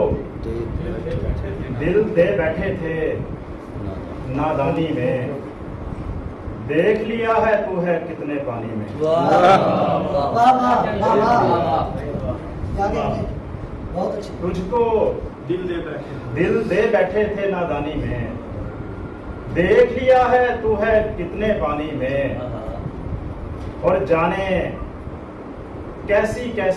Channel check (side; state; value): both; identical; correlation 1.00